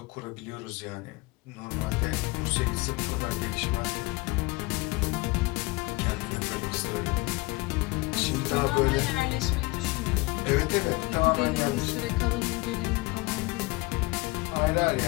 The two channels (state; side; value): quieter; right; 24.0 dB